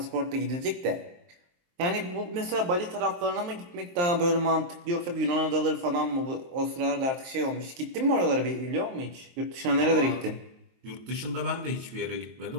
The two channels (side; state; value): left; late; 23 ms